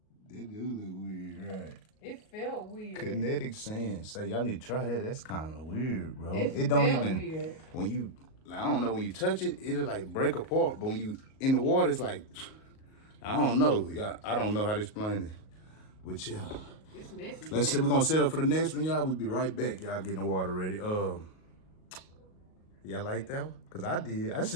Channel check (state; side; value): late; right; 38 ms